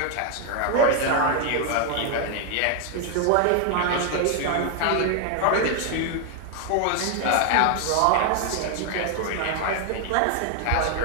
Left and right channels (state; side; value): different; both; correlation 0.00